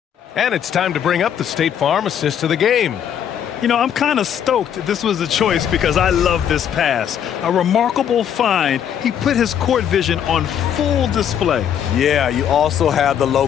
And it's time to bring up the State Farm assist of the game. You know, I'm kind of stoked this was a choice because I love this pass. A remarkable find. He put his court vision on full display. Yeah, you also have the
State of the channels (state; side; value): quieter; right; 9.1 dB